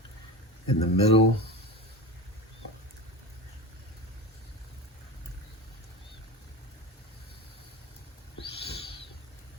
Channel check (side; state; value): both; normal; correlation 0.26